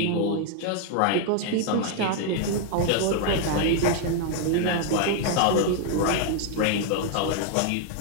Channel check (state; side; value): different; both; correlation 0.01